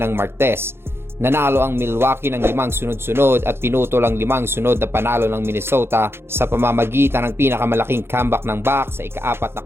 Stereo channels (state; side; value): late; left; 0.12 ms